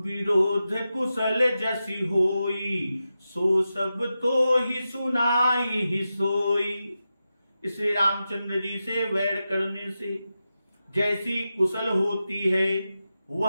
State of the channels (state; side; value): inverted; both; correlation -0.91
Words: विरोध कुशल जसी होई, सो सब तो ही सुनाई ही सोई। इसलिए रामचंद्र जी से वैर करने से जैसी कुशल होती है